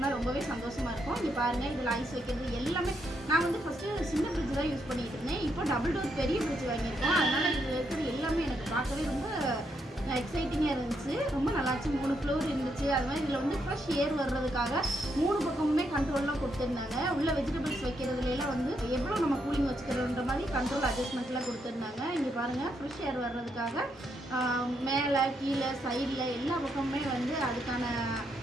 ரொம்பவே சந்தோஷமாக இருக்கும். இங்கே பாருங்கள், இதில் ஐஸ் வைக்கிறது எல்லாமே. நான் வந்து ஃபஸ்ட்டு சின்ன ஃப்ரிட்ஜ் தான் யூஸ் பண்ணிகிட்டு இருந்தேன். இப்போ டபுள் டோர் பெரிய ஃப்ரிட்ஜ் வாங்கியிருக்கோம். அதனால் இதில் இருக்கிறது எல்லாமே எனக்கு பார்க்கவே ரொம்ப எக்ஸைட்டிங்காக இருந்துச்சு. ரொம்ப நல்லாச்சு. 3 ஃப்ளோர் இருந்துச்சு. அது மாதிரி இதில் வந்து ஃப்ரெஷ் ஏர் வர்றதுக்காக 3 பக்கமுமே கண்ட்ரோல்லாம் கொடுத்துருந்தாங்க. உள்ள வெஜிடபிள்ஸ் வைக்கிறதுலாம் வந்து எவ்வளோ நம்ம கூலிங் வச்சுக்கிறோன்ற மாதிரி கண்ட்ரோல் அட்ஜஸ்ட்மெண்ட்லாம் கொடுத்துருந்தாங்க. இங்கே பாருங்கள், ஃப்ரெஷ் ஏர் வர்றதுக்காக மேலே கீழே சைடில் எல்லா பக்கமுமே வந்து அதுக்கான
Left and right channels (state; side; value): normal; both; correlation 0.78